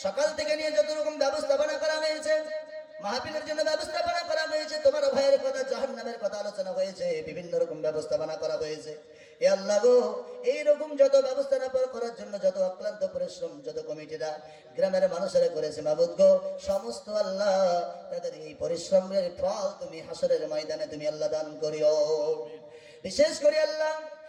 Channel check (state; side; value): identical; both; correlation 1.00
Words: সকাল থেকে নিয়ে যত রকম ব্যবস্থাপনা করা হয়েছে, মাহফিলের জন্য ব্যবস্থাপনা করা হয়েছে, তোমার ভাইয়ের কথা, জাহান্নামের কথা আলোচনা হয়েছে, বিভিন্ন রকম ব্যবস্থাপনা করা হয়েছে। এ আল্লাহ গো, এইরকম যত ব্যবস্থাপনা করার জন্য যত অক্লান্ত পরিশ্রম যত কমিটিরা গ্রামের মানুষেরা করেছে মাবুদ গো, সমস্ত আল্লাহ তাদের এই পরিশ্রমের ফল তুমি হাসরের ময়দানে তুমি আল্লাহ দান করিও। বিশেষ করে আল্লাহ